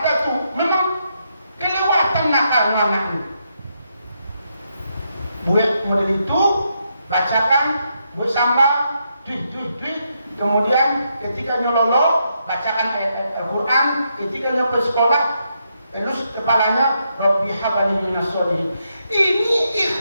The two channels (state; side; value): inverted; both; correlation -0.80